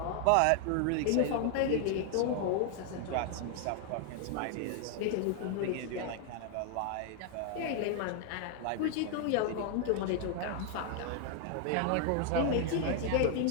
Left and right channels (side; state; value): both; different; correlation 0.00